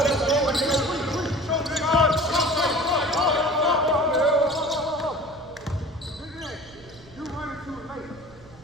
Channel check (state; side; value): noise; right; rumble, 23 dB below the sound